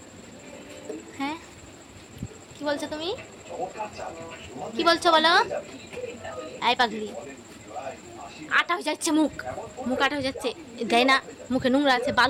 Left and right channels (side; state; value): both; identical; correlation 1.00